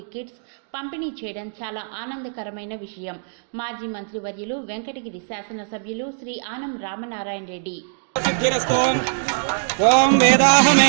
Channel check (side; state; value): left; silent; 64 dB below the other